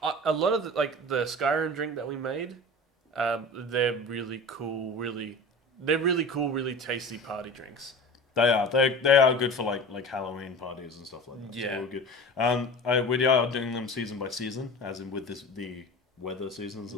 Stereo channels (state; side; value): normal; both; correlation 0.35